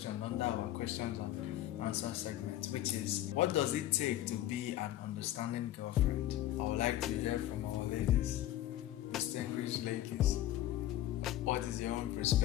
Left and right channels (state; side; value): quieter; right; 13.7 dB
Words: under our questions and answer segment, which is, what does it take to be an understanding girlfriend? I would like to hear from our ladies, distinguished ladies. What is your own